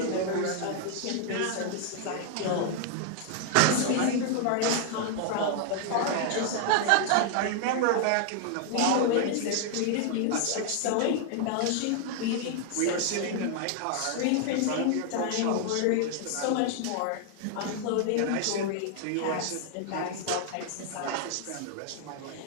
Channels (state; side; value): different; both; correlation 0.00